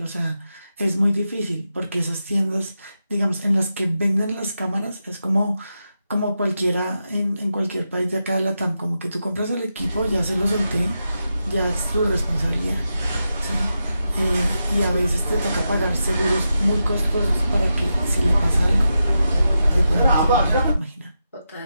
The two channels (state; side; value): inverted; both; correlation -0.88